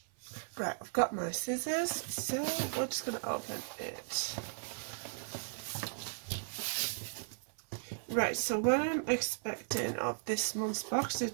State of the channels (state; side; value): silent; left; 54 dB below the other